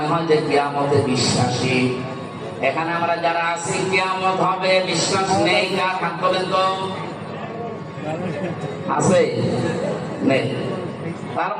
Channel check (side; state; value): both; identical; correlation 1.00